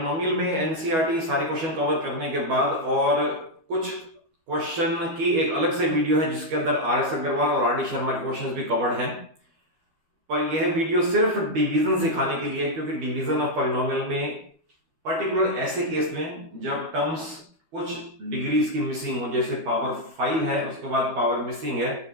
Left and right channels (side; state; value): left; late; 12 ms